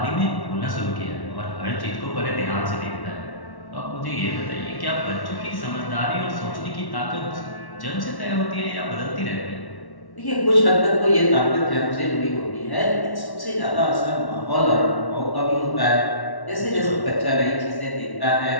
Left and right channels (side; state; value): right; late; 1.1 ms